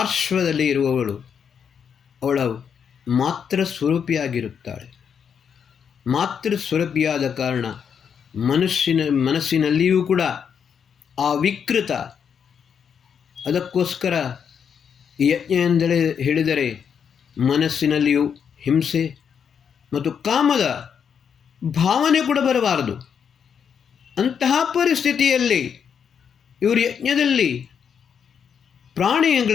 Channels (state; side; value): quieter; right; 7.3 dB